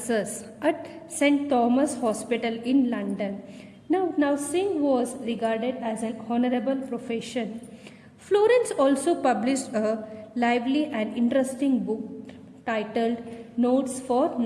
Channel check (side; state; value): both; identical; correlation 1.00